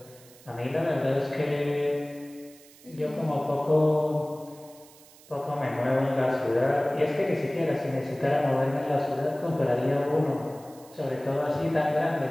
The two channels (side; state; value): right; noise; hiss, 24 dB below the sound